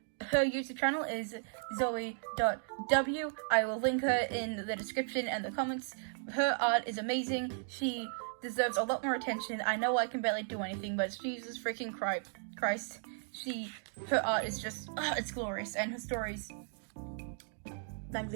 Her YouTube channel is zoe.w. I will link her in the description and the comments. Her art is amazing. She deserves a lot more attention. I know I can barely do anything, but Jesus freaking Christ. Her art is just, it's glorious, and her stories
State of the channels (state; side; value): silent; left; 54 dB below the other